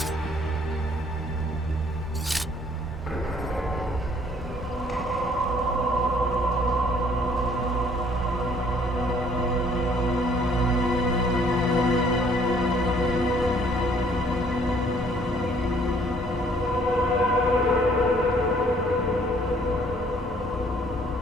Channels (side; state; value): both; normal; correlation 0.61